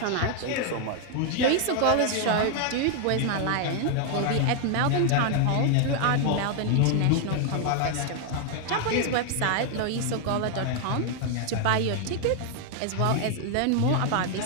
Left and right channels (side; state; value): both; different; correlation 0.00